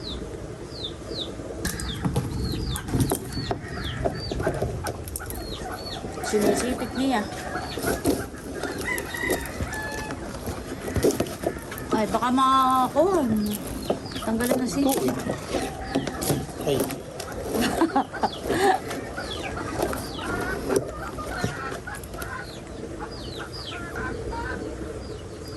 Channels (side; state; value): both; identical; correlation 1.00